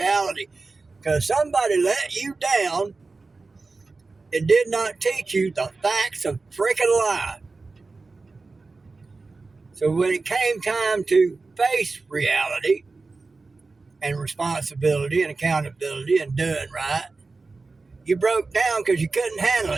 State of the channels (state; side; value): quieter; left; 3.8 dB